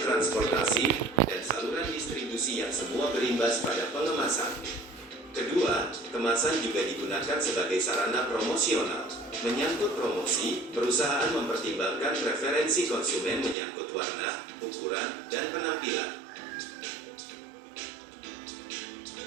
dan saluran distribusi yang semua berimbas pada pengemasan. Kedua, kemasan juga digunakan sebagai sarana promosional. Menyangkut promosi, perusahaan mempertimbangkan preferensi konsumen menyangkut warna, ukuran, dan penampilan.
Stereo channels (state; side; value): drops out; left; at 13.6 s